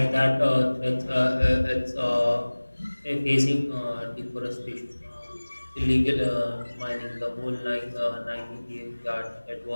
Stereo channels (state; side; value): inverted; both; correlation -1.00